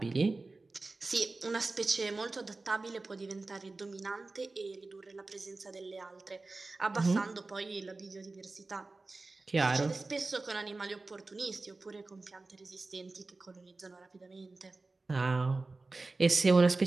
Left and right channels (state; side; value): quieter; left; 3.5 dB